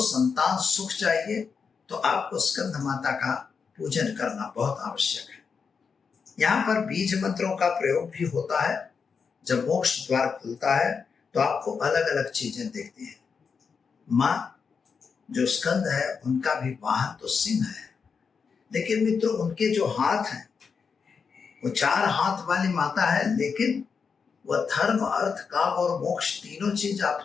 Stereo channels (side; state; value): right; quieter; 5.7 dB